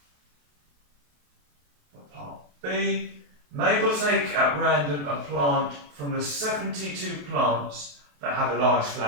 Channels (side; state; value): left; late; 28 ms